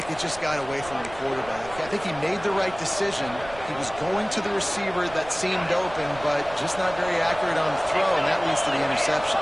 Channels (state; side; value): noise; right; rumble, 17 dB below the sound